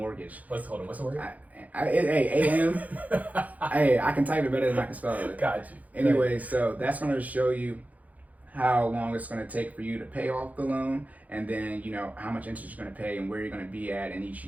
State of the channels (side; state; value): left; late; 0.076 ms